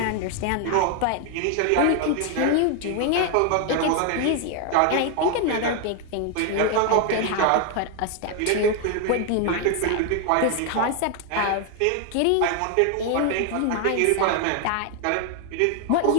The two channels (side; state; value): both; different; correlation 0.01